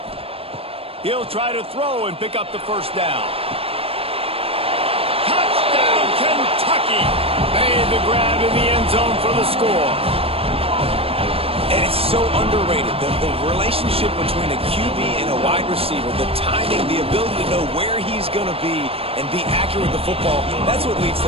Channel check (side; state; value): left; late; 0.28 ms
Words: He'll try to throw and pick up the first down. Touchdown, Kentucky! Made the grab in the end zone for the score. And it's so underrated, the relationship between a QB and a wide receiver, the timing, the ability to know where he's going to be and be accurate with the football, that's what leads